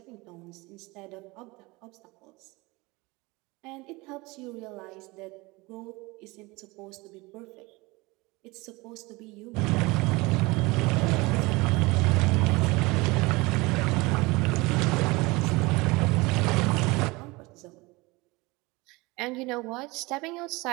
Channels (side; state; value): left; quieter; 23.5 dB